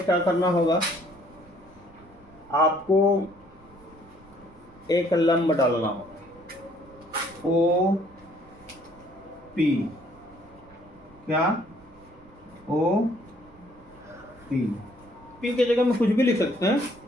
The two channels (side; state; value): right; noise; rumble, 28 dB below the sound